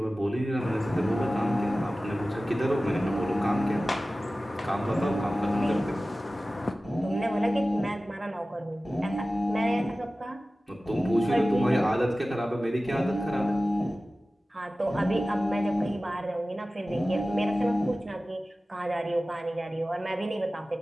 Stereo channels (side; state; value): both; normal; correlation 0.96